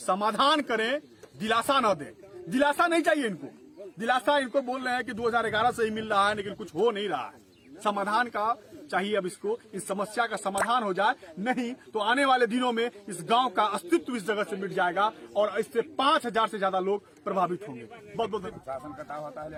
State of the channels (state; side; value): identical; both; correlation 1.00